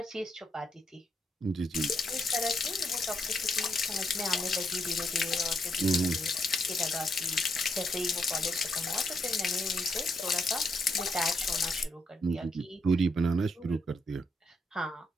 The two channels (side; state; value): both; normal; correlation 0.78